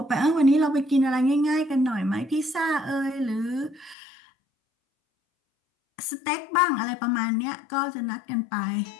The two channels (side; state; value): right; drops out; at 4.0 s